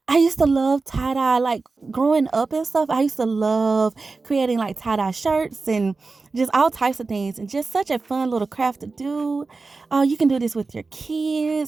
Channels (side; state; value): left; quieter; 4.0 dB